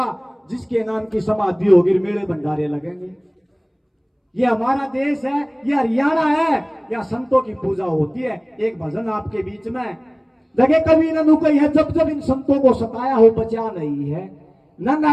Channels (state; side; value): identical; both; correlation 1.00